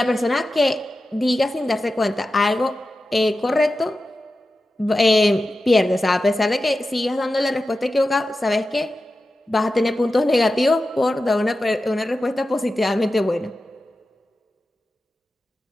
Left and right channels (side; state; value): both; normal; correlation 0.93